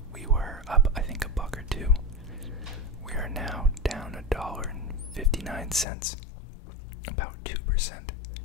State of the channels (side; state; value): right; drops out; at 5.9 s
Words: we were up, I think, $1 or $2. We are now down $1.59, about 2%.